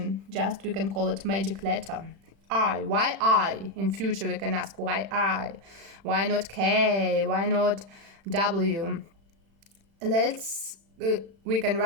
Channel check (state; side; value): late; left; 36 ms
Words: just we can call it magic letter. I. Why I? In future we can ask why I? Why not K? Why not W? We can